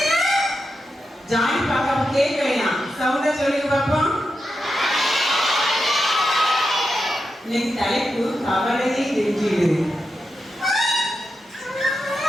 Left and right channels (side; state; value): both; normal; correlation 0.88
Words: ஜானி பாப்பா கேட்கலையா? சவுண்டா சொல்லுங்க பாப்பா. இன்னைக்கு தலைப்பு கவலையை வென்றிடு.